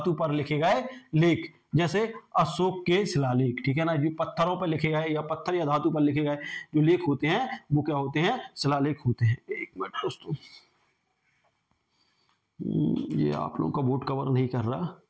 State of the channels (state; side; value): identical; both; correlation 1.00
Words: पर लिखे गए लेख, जैसे अशोक के शिलालेख, ठीक है ना, जो पत्थरों पर लिखे गए या पत्थर या धातु पर लिखे गए जो लेख होते हैं वो क्या होते हैं, शिलालेख होते हैं। एक मिनट दोस्तों, ये आप लोगों का बोर्ड कवर नहीं कर रहा।